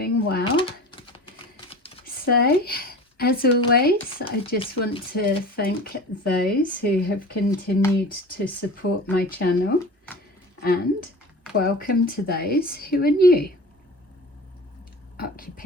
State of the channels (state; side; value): normal; both; correlation 0.37